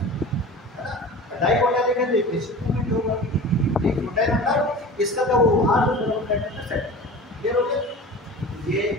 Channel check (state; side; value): normal; both; correlation 0.37